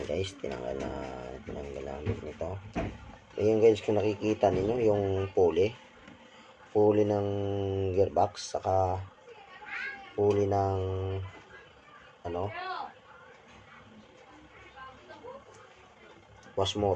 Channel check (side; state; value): both; identical; correlation 1.00